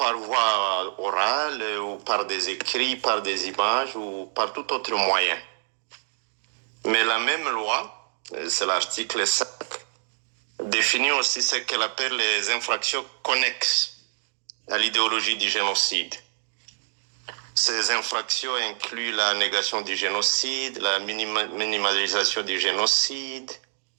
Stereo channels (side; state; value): left; silent; digital silence